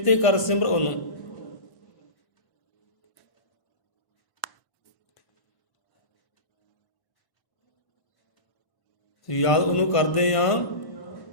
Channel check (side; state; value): right; late; 1.5 ms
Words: ਕਰ, ਸਿਮਰ ਉਹਨੂੰ। ਯਾਦ ਉਹਨੂੰ ਕਰਦੇ ਆ